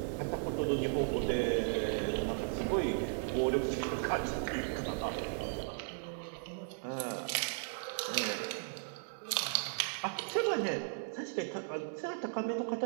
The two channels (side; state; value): left; silent; digital silence